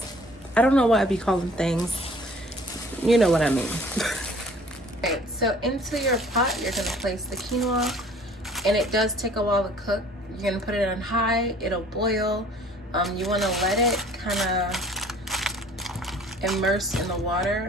I don't know why I be calling things. You know what I mean. Alright, so into your pot, you're going to place the quinoa. And it does take a while to cook. You're going to put it on high. It'll boil. You want to let it kind of immerse in the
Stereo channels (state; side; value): normal; both; correlation 0.52